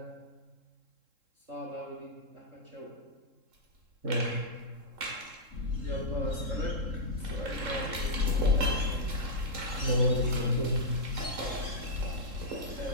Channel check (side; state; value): left; late; 3.7 ms